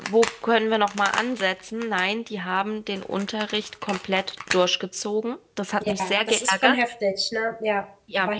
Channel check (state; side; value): identical; both; correlation 1.00